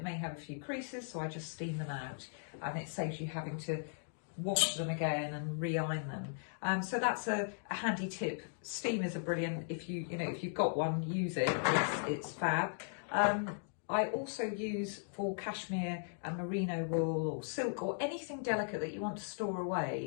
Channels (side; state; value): right; silent; digital silence